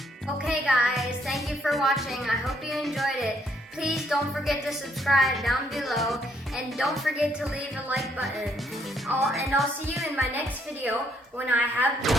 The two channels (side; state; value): both; normal; correlation 0.69